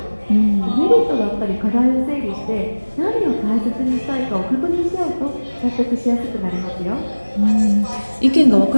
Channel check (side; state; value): both; inverted; correlation -1.00